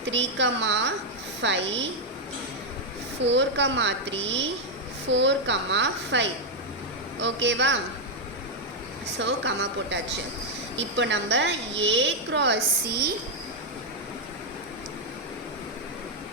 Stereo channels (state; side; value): normal; both; correlation -0.01